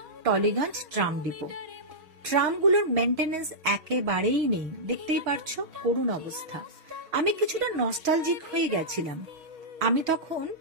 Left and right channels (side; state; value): left; late; 6.3 ms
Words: টলিগঞ্জ ট্রাম ডিপো। ট্রামগুলোর মেনটেনেন্স একেবারেই নেই, দেখতেই পারছো করুণ অবস্থা। আমি কিছুটা নস্টালজিক হয়ে গেছিলাম। আমি তখন